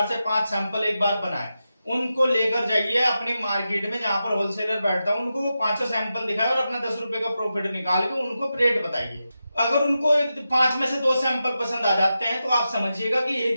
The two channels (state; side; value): inverted; both; correlation -0.90